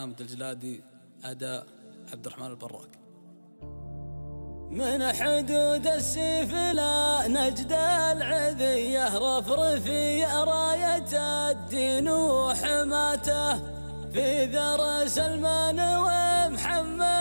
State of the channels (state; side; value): inverted; both; correlation -1.00